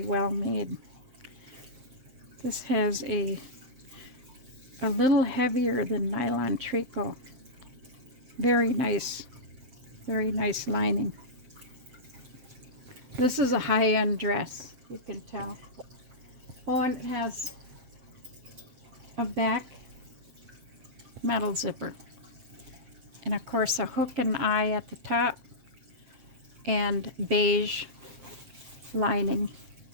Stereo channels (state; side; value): late; left; 7.6 ms